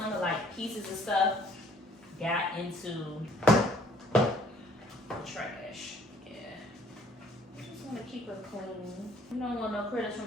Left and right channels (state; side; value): normal; both; correlation 0.60